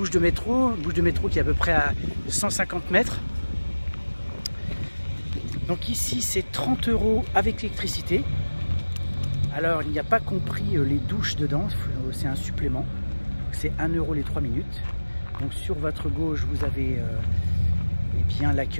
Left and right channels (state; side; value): inverted; both; correlation -1.00